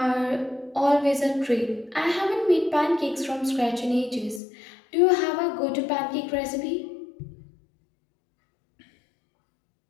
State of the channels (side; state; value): right; drops out; at 4.4 s